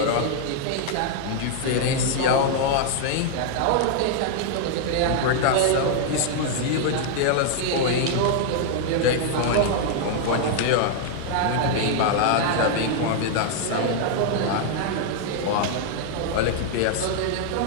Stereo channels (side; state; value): both; different; correlation 0.00